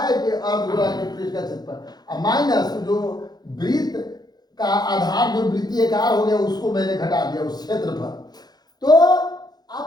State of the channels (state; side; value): late; right; 0.19 ms